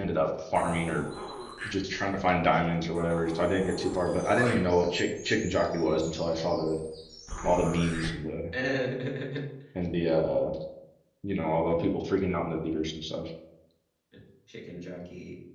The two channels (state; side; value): identical; both; correlation 1.00